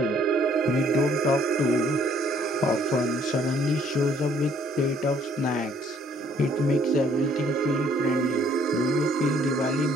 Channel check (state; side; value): normal; both; correlation 0.62